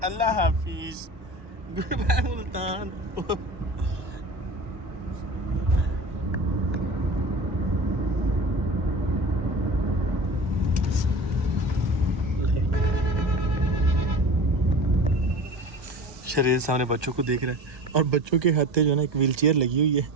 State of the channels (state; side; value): late; left; 1.2 ms